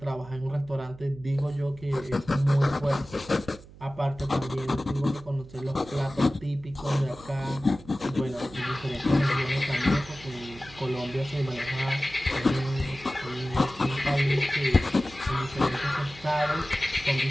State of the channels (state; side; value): noise; right; hum, 20 dB below the sound